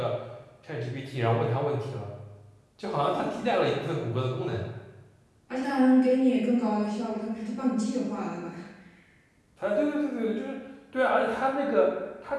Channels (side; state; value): both; identical; correlation 1.00